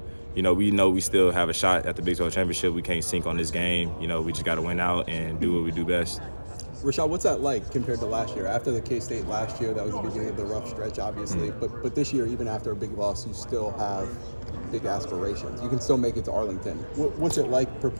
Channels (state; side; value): inverted; both; correlation -1.00